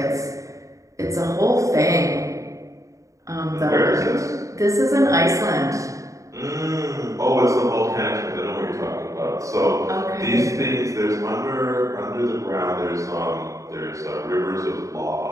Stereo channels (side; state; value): left; late; 0.16 ms